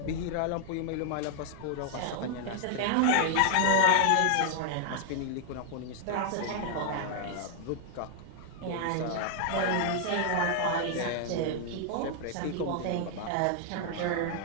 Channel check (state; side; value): different; both; correlation 0.00